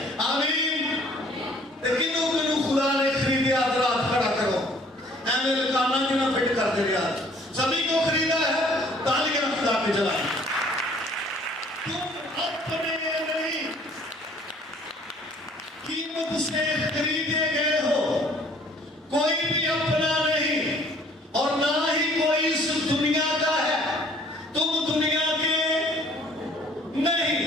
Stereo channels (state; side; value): normal; both; correlation 0.57